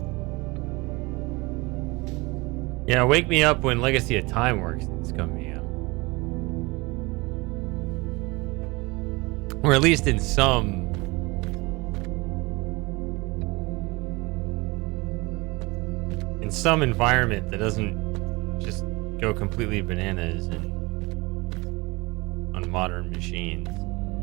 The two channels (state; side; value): quieter; left; 24.3 dB